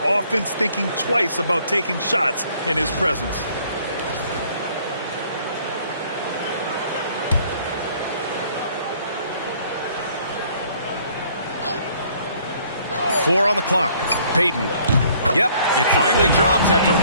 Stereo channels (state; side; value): inverted; both; correlation -0.60